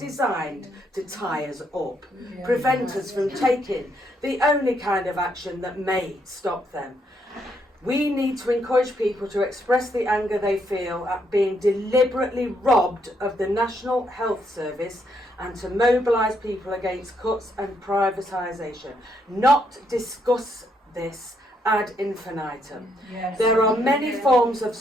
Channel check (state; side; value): normal; both; correlation 0.75